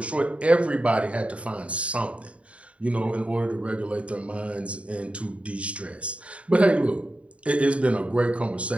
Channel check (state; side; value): late; left; 0.063 ms